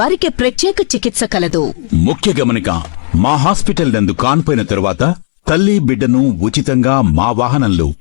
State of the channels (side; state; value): right; silent; digital silence